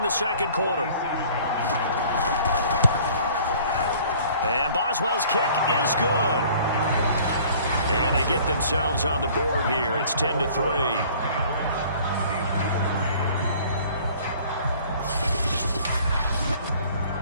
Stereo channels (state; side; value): inverted; both; correlation -0.52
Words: the second quarter. And Boswell's kick is good. And they get themselves on the board here. It's 10-3.